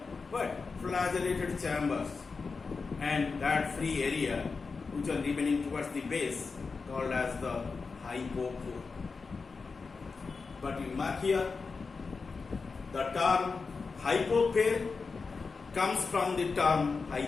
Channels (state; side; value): quieter; right; 4.6 dB